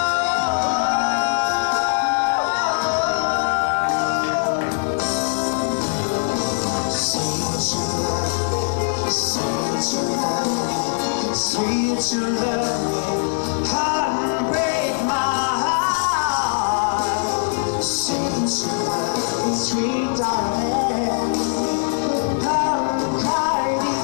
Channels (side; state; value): right; silent; digital silence